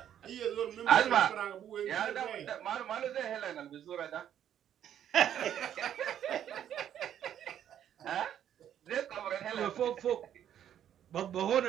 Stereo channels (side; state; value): left; quieter; 10.2 dB